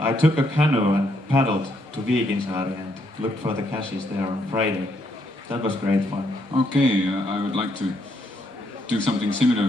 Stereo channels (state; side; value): normal; both; correlation 0.74